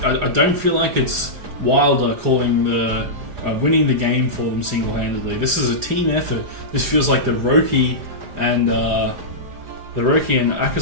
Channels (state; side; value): late; left; 4.8 ms